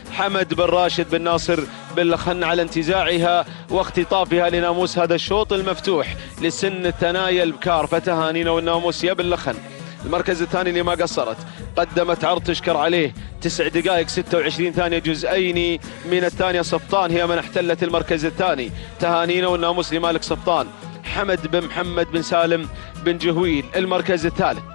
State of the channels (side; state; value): right; silent; digital silence